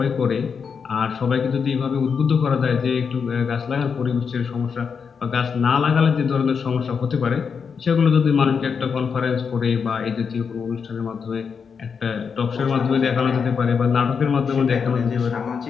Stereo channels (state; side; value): quieter; right; 6.1 dB